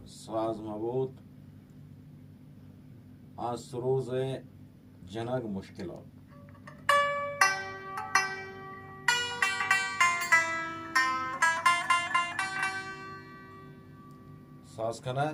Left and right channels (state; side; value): identical; both; correlation 1.00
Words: ساز مبود از سروز جنگ مشکلات ساز